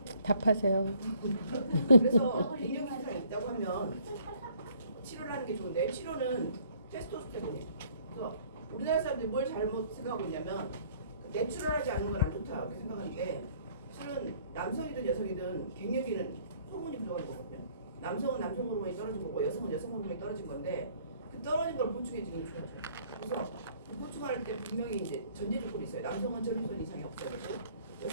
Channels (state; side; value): inverted; both; correlation -0.60